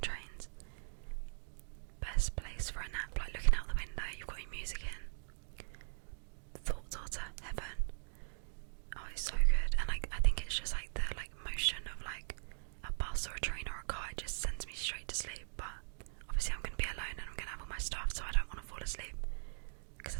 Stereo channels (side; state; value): left; silent; digital silence